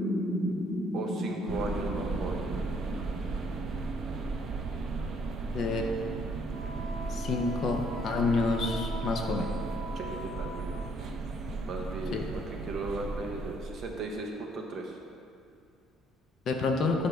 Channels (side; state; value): both; normal; correlation 0.66